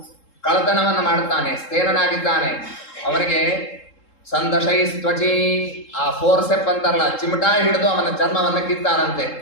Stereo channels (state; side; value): late; right; 3.7 ms